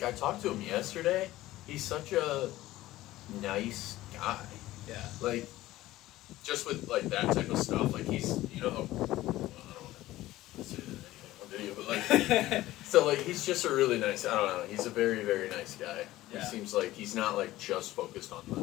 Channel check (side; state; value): right; quieter; 16.2 dB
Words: I talked to him yesterday. He's such a nice guy. Yeah. Just with that type of stuff. He's I don't want to say anything on video, but so he's just a really nice. I don't know. He's a very very nice guy. Yeah. He seems like he's not just focused on